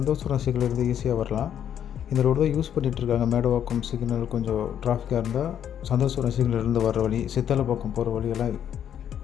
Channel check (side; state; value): right; quieter; 9.5 dB